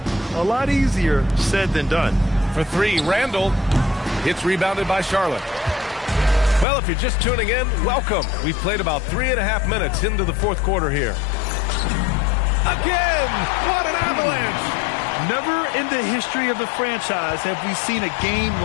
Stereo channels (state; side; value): drops out; right; at 6.7 s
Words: a lot easier said than done. For three, Randall. It's rebounded by Charlotte. Well, if you're just tuning in, welcome. We've played about 3.5 minutes into the fourth quarter here. Again! What an avalanche! Never in the history of the franchise have we seen a game